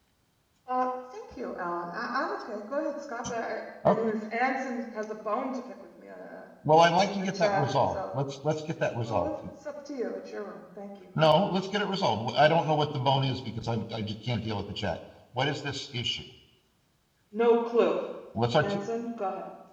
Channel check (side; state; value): both; identical; correlation 1.00